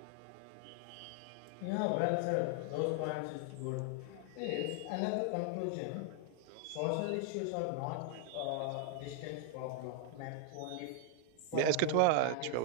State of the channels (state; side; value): different; both; correlation 0.00